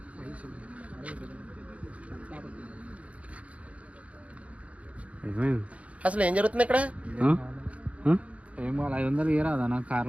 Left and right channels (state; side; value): late; left; 0.065 ms